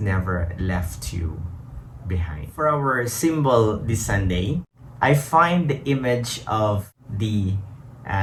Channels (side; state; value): both; identical; correlation 1.00